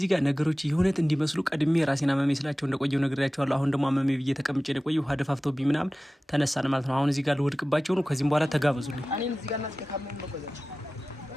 ጋር ነገሮች የሆነት እንዲመስሉ ቀድሜ ራሴን አመመኝ ስላቸው እንደቆየው ነግሬያቸዋለሁ። አሁን ደግሞ አመመኝ ብዬ ተቀምጬ ነው የቆየው። ውሃ ደፋፍተውብኝ ምናምን ተነሳን ማለት ነው። አሁን እዚህ ጋር ልወድቅባቸው ነው። ከዚህም በኋላ ተጋበዙልኝ። እኔም እዚህ ጋር እናስከካመኝ ነው ቆያችሁ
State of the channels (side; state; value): both; normal; correlation 0.96